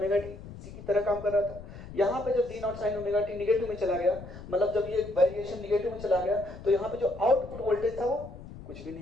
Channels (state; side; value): noise; left; rumble, 14 dB below the sound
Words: T इसी की तरह काम कर रहा था। यहाँ पे जब V naught sine omega T negative में चला गया, मतलब जब ये वेरिएशन निगेटिव में चला गया, तो यहाँ पे जो आउटपुट वोल्टेज था वो कुछ भी